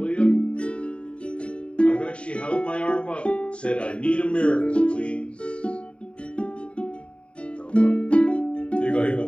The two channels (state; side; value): late; right; 0.059 ms